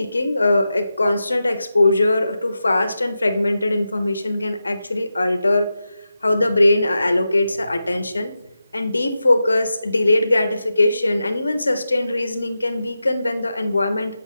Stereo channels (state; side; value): inverted; both; correlation -0.90